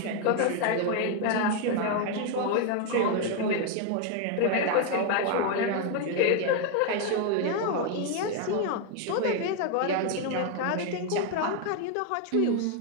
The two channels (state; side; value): different; both; correlation 0.01